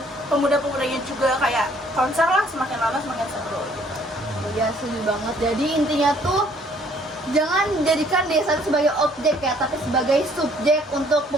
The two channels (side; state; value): both; normal; correlation 0.61